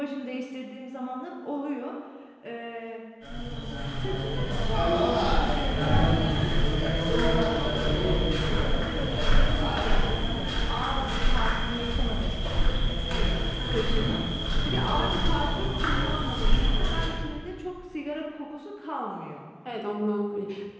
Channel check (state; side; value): identical; both; correlation 1.00